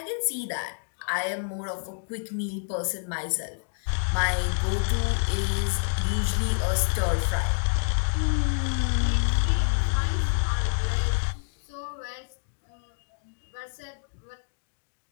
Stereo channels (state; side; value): silent; right; digital silence